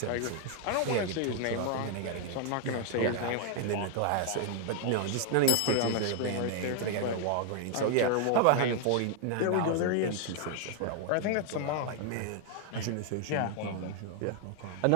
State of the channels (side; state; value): both; different; correlation 0.00